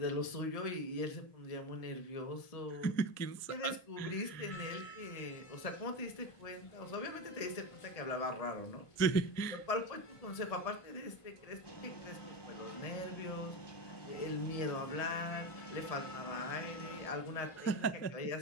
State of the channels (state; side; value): late; right; 1.7 ms